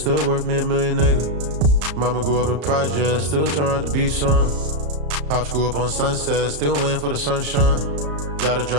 worth me $1 million, nigga. Mama grew up in projects, still turned out to be some. Pops grew up on Sunset, still waiting for the sunshine. Gotta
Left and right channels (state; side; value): late; left; 34 ms